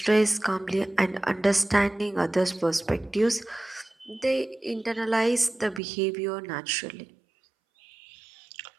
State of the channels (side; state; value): left; drops out; at 5.8 s